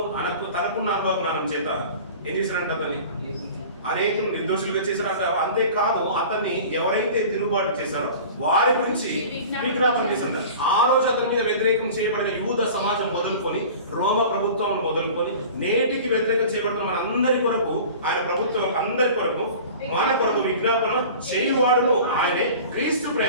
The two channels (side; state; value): both; inverted; correlation -0.40